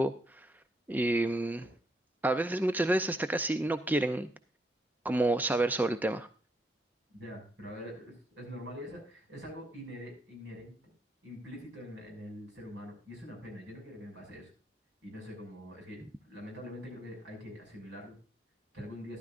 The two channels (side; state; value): both; normal; correlation 0.75